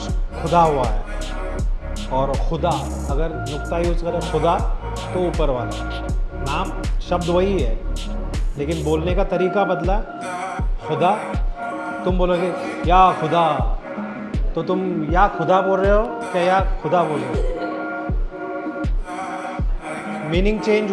खुदा हुआ है, और खुदा अगर नुक्ता यूज़ करें खुदा तो ऊपर वाला। नाम शब्द वही है लेकिन बोलने का तरीका बदला। खुदा, तुम बोलोगे या खुदा, तो तुम या खुदा बोल रहे हो क्या या खुदा बोल रहे हो? मीनिंग चेंज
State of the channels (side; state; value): both; identical; correlation 1.00